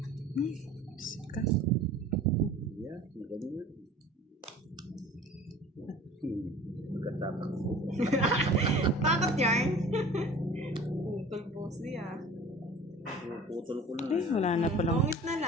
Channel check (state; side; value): normal; both; correlation 0.43